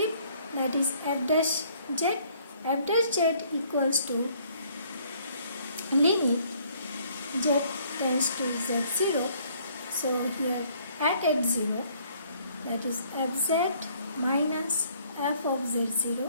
That is f dash z. F dash z equals to limit z tends to z0. So here at h0, that is fz minus f of z0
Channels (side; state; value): both; inverted; correlation -0.62